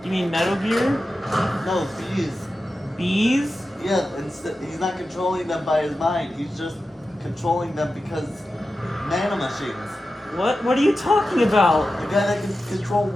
You mean Metal Gear? No, bees. Bees? Yeah, he's not controlling them by his mind. He's just controlling them because nanomachines. What? What are you talking about? The guy that can control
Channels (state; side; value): normal; both; correlation 0.92